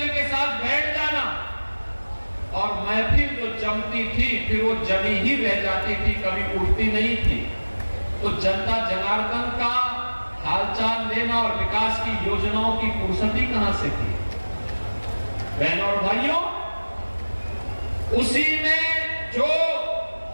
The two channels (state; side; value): inverted; both; correlation -1.00